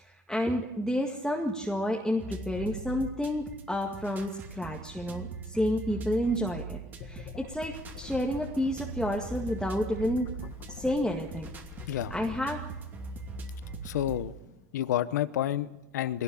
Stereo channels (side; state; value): both; normal; correlation 0.59